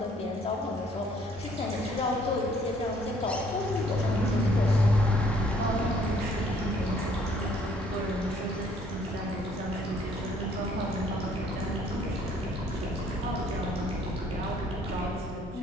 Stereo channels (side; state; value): both; normal; correlation 0.62